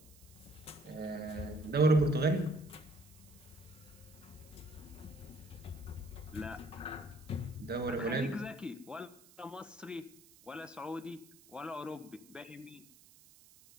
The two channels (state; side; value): noise; right; hiss, 23 dB below the sound